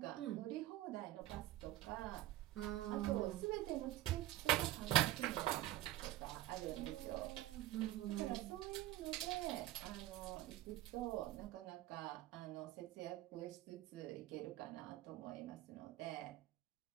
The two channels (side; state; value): left; quieter; 14.8 dB